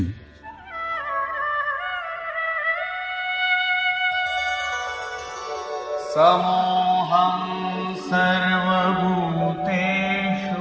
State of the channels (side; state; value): both; identical; correlation 1.00